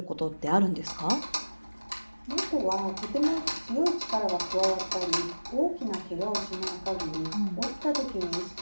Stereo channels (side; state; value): both; inverted; correlation -1.00